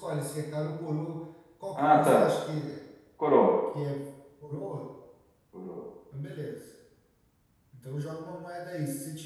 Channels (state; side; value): identical; both; correlation 1.00